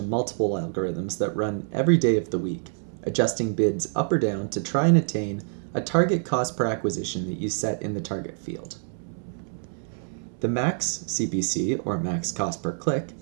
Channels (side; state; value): left; silent; 61 dB below the other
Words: of multiple algorithms that run every day of the week, adjusting bids up or down to try and attain a target cost per acquisition that you set in the target field. The max CPC, or max cost per click,